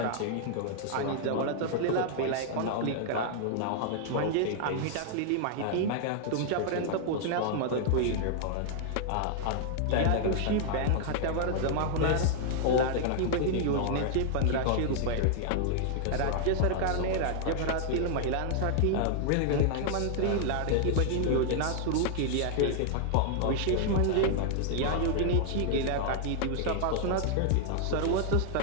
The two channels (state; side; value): different; both; correlation -0.01